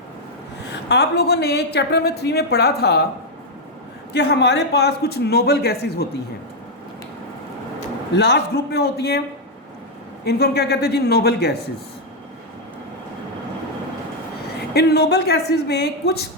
आप लोगों ने चैप्टर नंबर 3 में पढ़ा था कि हमारे पास कुछ नोबल गैसेस होती हैं, लास्ट ग्रुप में होती हैं, इनको हम क्या कहते हैं जी, नोबल गैसेस। इन नोबल गैसेस में कुछ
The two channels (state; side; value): normal; both; correlation 0.00